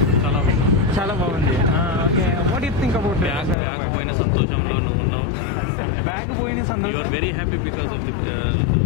చాలా బాగుంది. Okay, what you think about bag పోయిన సంతోషంలో నువ్వు ఉన్నావు. బ్యాగ్ పోయిన సంతోషం. You are very happy because of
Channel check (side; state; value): right; drops out; at 3.6 s